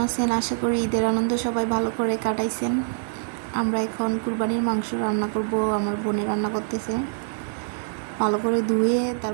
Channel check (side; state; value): left; silent; digital silence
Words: আছেন? আশা করি ঈদের আনন্দ সবাই ভালো করে কাটাইছেন। আমরা এখন কুরবানির মাংস রান্না করব। আমার বোনে রান্না করতেছে। ভালো করে ধুয়ে